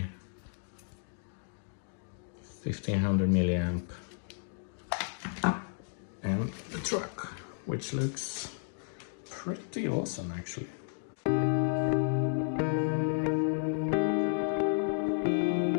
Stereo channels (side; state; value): right; silent; digital silence